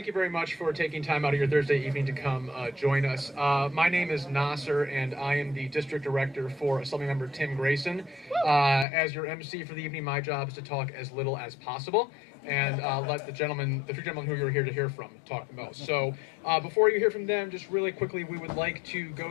you very much for taking time out of your Thursday evening to come join us. My name is Nasser, and I am the District Director for Assemblymember Tim Grayson. As your MC for the evening, my job is to talk as little as possible and let the three gentlemen who you're here to hear from, talk the most. So before you hear from them, just really quickly, we would like to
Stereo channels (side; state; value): right; drops out; at 8.8 s